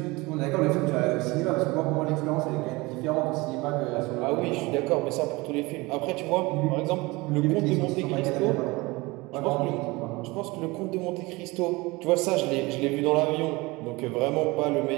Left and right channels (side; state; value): left; quieter; 23.1 dB